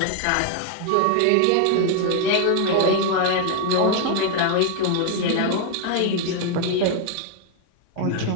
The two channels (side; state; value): both; different; correlation 0.00